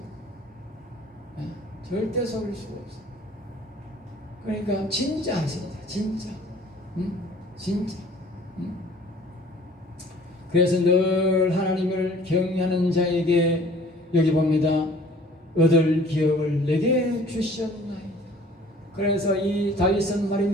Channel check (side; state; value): both; normal; correlation 0.52